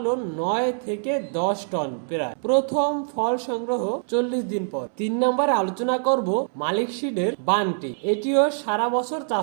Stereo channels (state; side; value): silent; left; digital silence